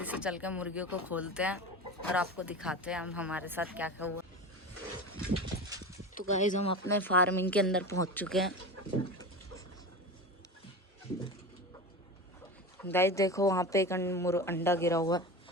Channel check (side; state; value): both; normal; correlation 0.28